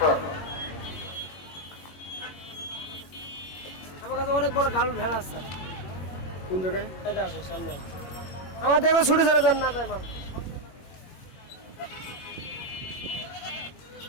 আমার কাছে অনেক বড় গাল ভেড়া আছে। কোন জায়গায়? এটা আছে সামনে। আমার দেখো ছুটে চলে যান না আমার।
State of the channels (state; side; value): late; right; 21 ms